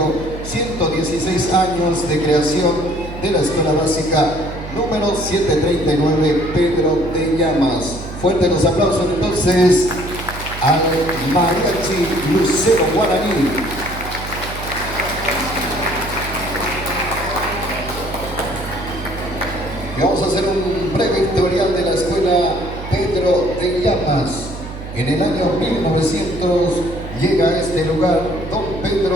116 años de creación de la Escuela Básica número 739 Pedro de Llamas. Fuertes los aplausos entonces al Mariachi Lucero Guaraní. Y vamos a hacer un breve historial de la Escuela Pedro de Llamas. En el año 1900 llega a este lugar don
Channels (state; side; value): noise; right; hum, 11 dB below the sound